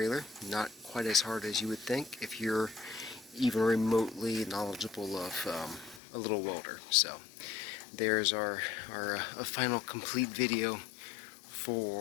Not quite as hard as you would think if you're even remotely knowledgeable of a little welder. So there's our final complete video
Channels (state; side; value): drops out; right; at 6.0 s